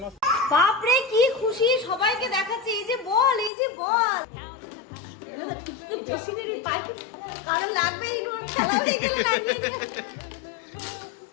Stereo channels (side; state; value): right; drops out; at 3.5 s